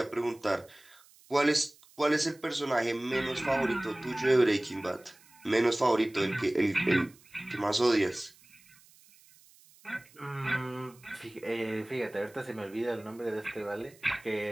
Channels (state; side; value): noise; right; hiss, 27 dB below the sound